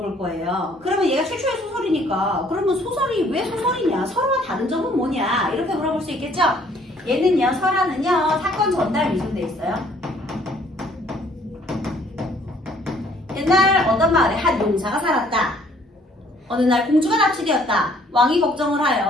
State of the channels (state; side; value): normal; both; correlation 0.61